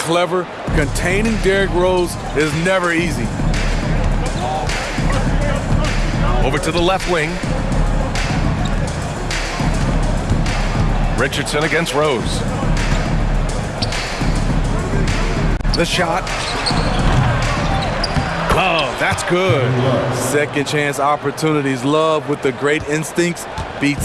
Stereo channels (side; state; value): both; identical; correlation 1.00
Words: Containing Derrick Rose is never easy. Over to the left wing. Richardson against Rose. The shot. Love, that's good. Second chance opportunities. Love with the great instincts